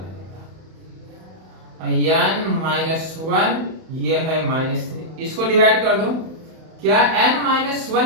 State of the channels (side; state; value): left; late; 31 ms